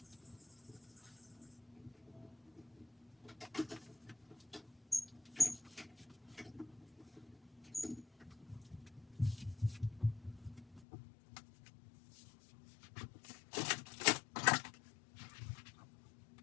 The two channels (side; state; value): right; drops out; at 10.9 s